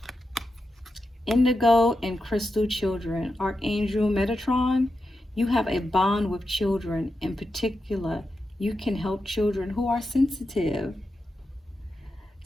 Indigo and Crystal Children. Archangel Metatron. You have a bond with children. In particular, you can help children who are sensitive.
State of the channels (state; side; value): normal; both; correlation 0.89